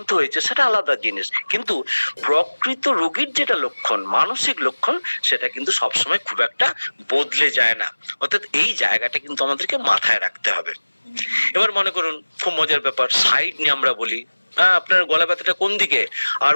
হয়েছে, সেটা আলাদা জিনিস, কিন্তু প্রকৃত রোগীর যেটা লক্ষণ, মানসিক লক্ষণ, সেটা কিন্তু সবসময় খুব একটা বদলে যায় না। অর্থাৎ এই জায়গাটা কিন্তু আমাদেরকে মাথায় রাখতে হবে। এবার মনে করুন, খুব মজার ব্যাপার, সাইড নিয়ে আমরা বলি, আপনার গলা ব্যথাটা কোন দিকে? আর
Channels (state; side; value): inverted; both; correlation -1.00